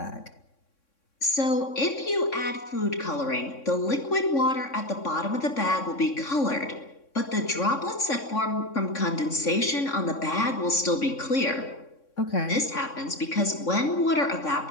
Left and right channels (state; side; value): late; right; 3.6 ms